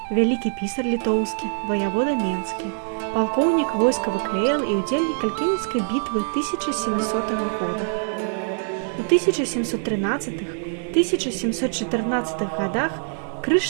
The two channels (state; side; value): silent; left; 63 dB below the other